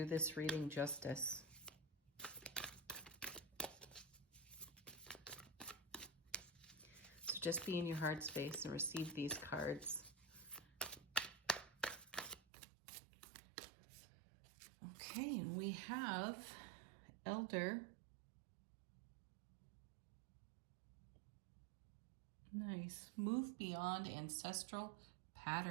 this reading justice. So just be in your heart space and receive these cards. Okay, and we have Elder. Nice. Move beyond ancestral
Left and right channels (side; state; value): left; drops out; at 12.4 s